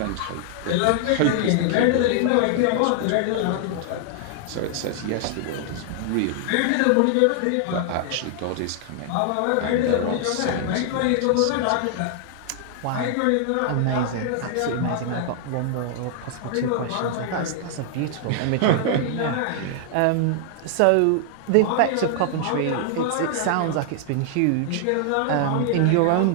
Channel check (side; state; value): both; different; correlation 0.00